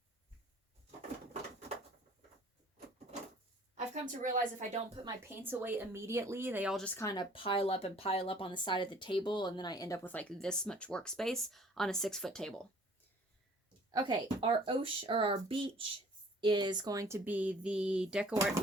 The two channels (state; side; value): normal; both; correlation 0.53